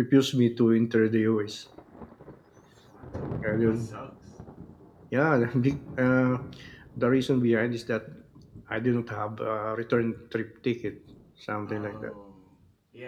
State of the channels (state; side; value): identical; both; correlation 1.00